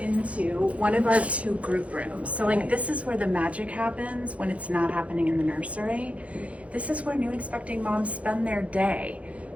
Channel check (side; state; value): left; late; 0.065 ms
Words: one of our 2 group rooms. So this is where the magic happens when it's not happening in the nursery. This is where new expecting moms spend their day,